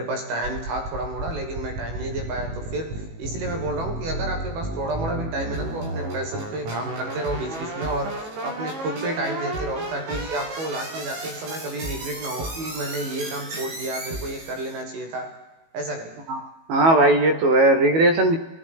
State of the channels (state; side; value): late; left; 18 ms